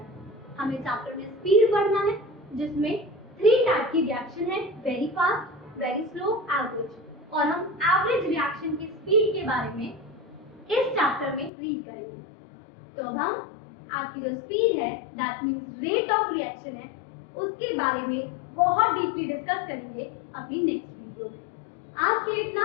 हमें चैप्टर में स्पीड पढ़ना है जिसमें 3 टाइप की रिएक्शन है, very fast, very slow, average. और हम एवरेज रिएक्शन की स्पीड के बारे में इस चैप्टर में रीड करेंगे। तो अब हम आपकी जो स्पीड है, that means rate of reaction है, उसके बारे में बहुत डीपली डिस्कस करेंगे अपनी नेक्स्ट वीडियो में। आज के लिए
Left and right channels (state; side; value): drops out; right; at 11.5 s